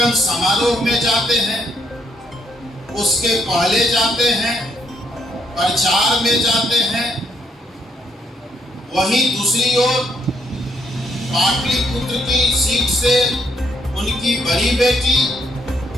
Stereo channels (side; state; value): both; normal; correlation 0.73